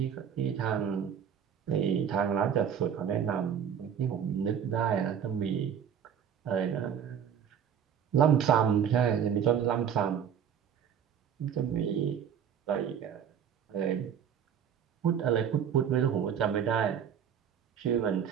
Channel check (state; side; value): quieter; left; 8.3 dB